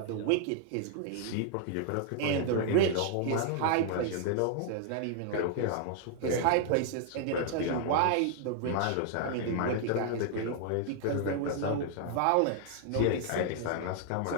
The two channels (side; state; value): both; different; correlation -0.01